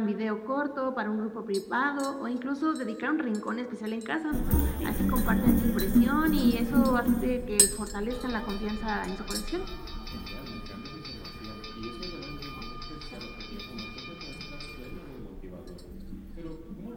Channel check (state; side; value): identical; both; correlation 1.00